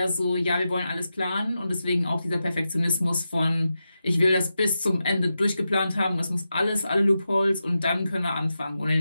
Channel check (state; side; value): inverted; both; correlation -0.90